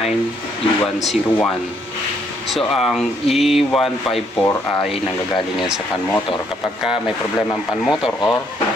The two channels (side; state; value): both; normal; correlation 0.70